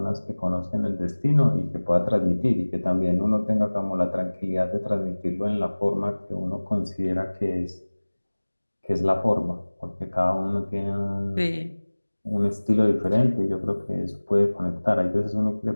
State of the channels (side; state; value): both; inverted; correlation -1.00